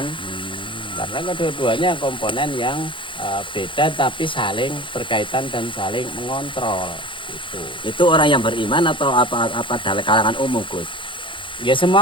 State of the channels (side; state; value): right; late; 0.24 ms